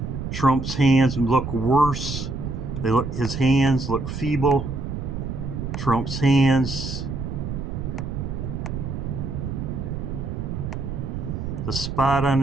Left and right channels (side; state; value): right; noise; rumble, 5 dB below the sound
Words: Trump's hands look worse. His hands look feeble. Trump's hands, the spot on